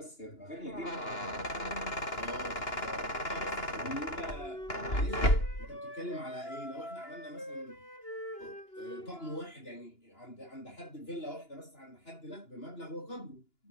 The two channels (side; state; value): right; late; 2.9 ms